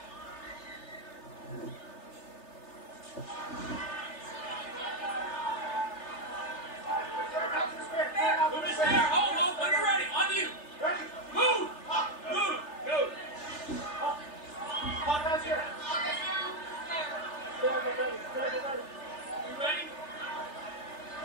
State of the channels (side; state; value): right; late; 3.3 ms